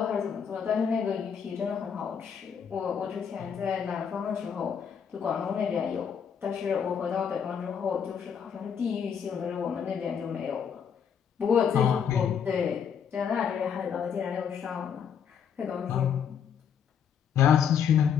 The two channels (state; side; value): quieter; right; 7.5 dB